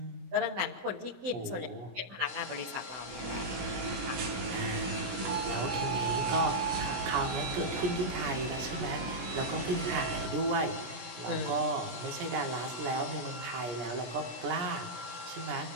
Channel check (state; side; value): late; left; 17 ms